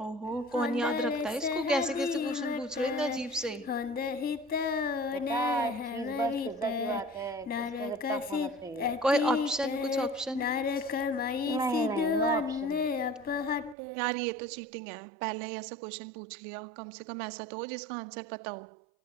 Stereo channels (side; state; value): left; drops out; at 13.8 s